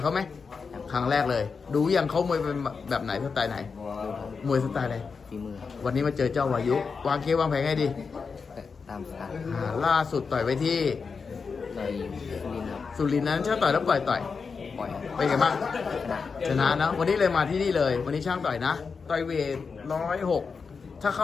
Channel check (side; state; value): right; quieter; 5.2 dB